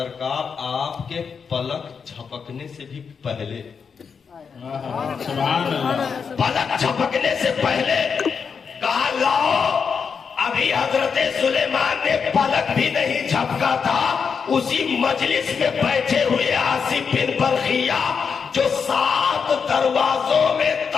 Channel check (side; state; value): right; quieter; 6.1 dB